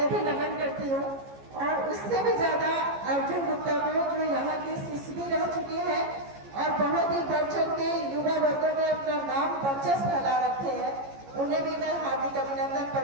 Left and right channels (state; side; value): late; left; 15 ms